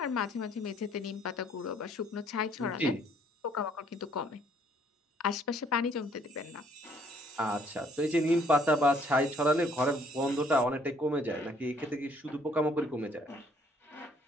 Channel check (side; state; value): both; normal; correlation 0.63